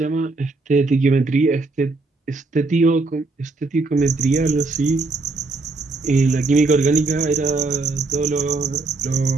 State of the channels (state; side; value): quieter; left; 3.5 dB